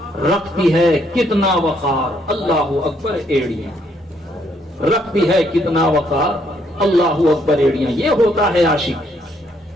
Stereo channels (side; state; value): both; normal; correlation 0.71